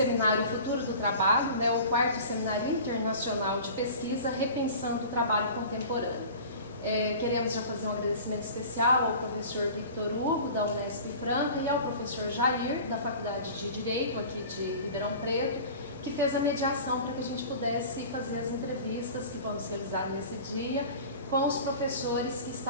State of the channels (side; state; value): both; inverted; correlation -0.40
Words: Futuro do Trabalho, o 4º Seminário Internacional de Pesquisa, Repensando o Trabalho Contemporâneo. Queremos já fazer um agradecimento especial ao professor Victor Hugo, da Unesp Franca, e ao professor Jair, da Faculdade de Direito, aqui de Ribeirão Preto, que fez a mediação para que a gente pudesse fazer as entrevistas que vamos realizar nesse dia com os professores que